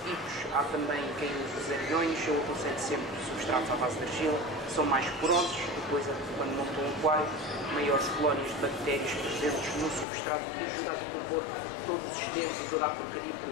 há também quem usa os ariões. Eu aconselho sempre substratos à base de argila, são mais porosos, depois quando montam um aquário, maiores colónias de bactérias presentes no substrato que ajuda a decompor todo o sistema, toda a porcaria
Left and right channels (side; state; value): right; drops out; at 10.1 s